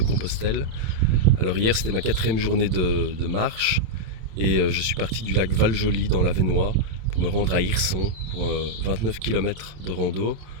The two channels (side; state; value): left; late; 27 ms